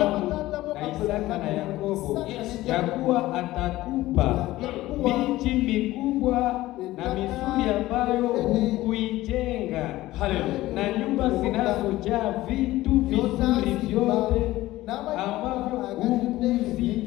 na Isaka na Yakobo, ya kuwa atakupa miji mikubwa na mizuri ambayo hukuijenga, na nyumba zinazojaa vitu vizuri vyote ambavyo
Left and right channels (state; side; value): quieter; right; 16.8 dB